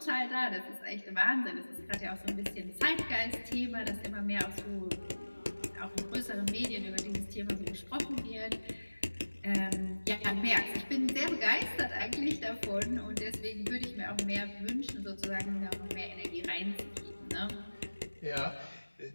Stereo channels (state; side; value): inverted; both; correlation -1.00